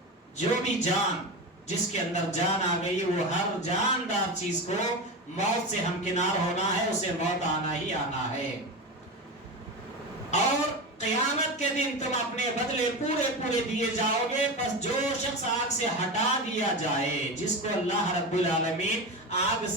جو بھی جان، جس کے اندر جان آ گئی، وہ ہر جاندار چیز کو موت سے ہمکنار ہونا ہے، اسے موت آنا ہی آنا ہے۔ اور قیامت کے دن تم اپنے بدلے پورے دیے جاؤ گے۔ بس جو شخص آگ سے ہٹا دیا جائے، جس کو اللہ رب العالمین آگ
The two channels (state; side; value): normal; both; correlation 0.22